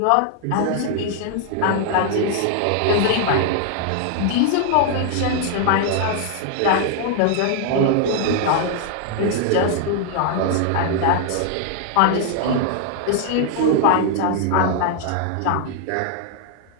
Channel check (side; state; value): both; different; correlation 0.00